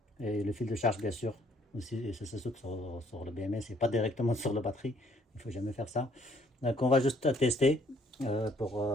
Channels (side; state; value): both; normal; correlation 0.64